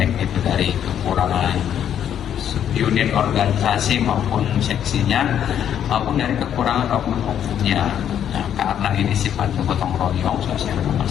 itu dari kekurangan unit organisasi maupun seksinya, maupun dari kekurangan oknum-oknumnya. Nah, karena ini sifatnya gotong royong sosial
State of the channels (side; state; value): right; quieter; 9.6 dB